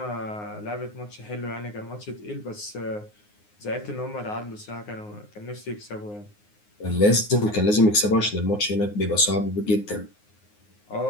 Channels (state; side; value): late; right; 9.6 ms